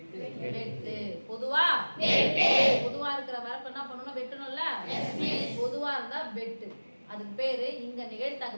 பொதுவா வெட்டு. பொதுவா இருக்கிற வரப்பு என்ன பண்ணணும்? வெட்டணும்ல. பொதுவா இருந்தா வெட்டு. அதுக்கு பேரு இங்க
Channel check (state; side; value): inverted; both; correlation -1.00